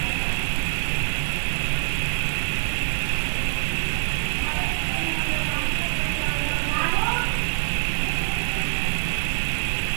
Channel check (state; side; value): silent; left; digital silence